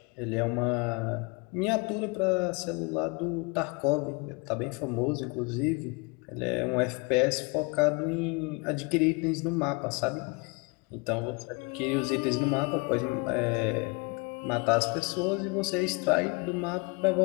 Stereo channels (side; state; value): right; quieter; 30.3 dB